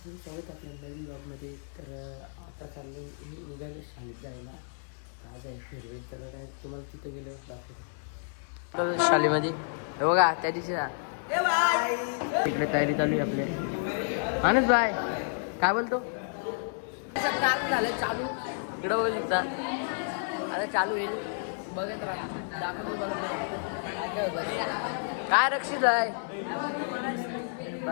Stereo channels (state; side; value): silent; right; digital silence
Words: स्वागत आपल्या नवीन ब्लॉगमध्ये. तर आता चाललं निघालं शाळेत जायला. आज आहे फेअरवेल, तर काय तुम्हाला तिथं गेलं दाखवतो शाळेमध्ये. हे बघा त्या दिवशी तिकडे तयारी चालू आहे आपल्या. मानस बाय काय बोलतो झालं चालू इकडं बघू शकता. आता चालू होईल बघत राहा दाखवतो काय होतं. काय रक्षित आहे